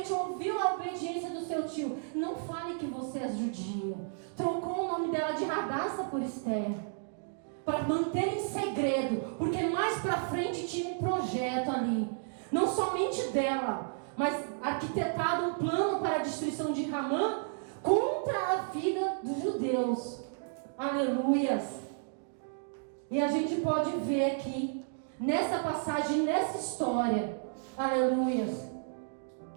realmente ouviu a obediência do seu tio, não fale que você é judia. Trocou o nome dela de Radassa por Esther, para manter em segredo, porque mais para frente tinha um projeto ali, não somente dela, mas arquitetado um plano para a destruição de Ramã contra a vida dos judeus. Aleluias! E a gente pode ver aqui, nessa passagem, nessa história, aleluias,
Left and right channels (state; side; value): silent; left; digital silence